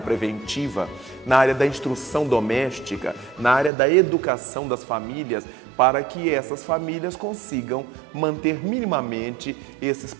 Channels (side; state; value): left; drops out; at 3.7 s